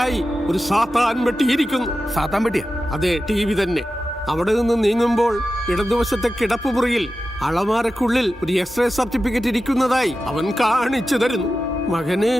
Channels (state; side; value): normal; both; correlation 0.93